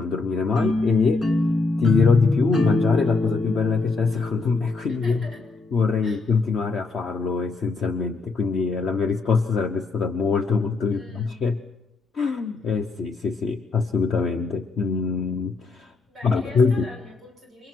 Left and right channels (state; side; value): quieter; right; 4.0 dB